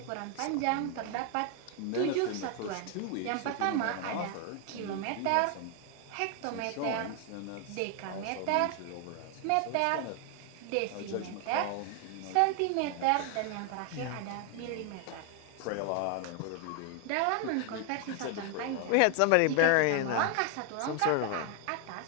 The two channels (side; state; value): both; different; correlation 0.00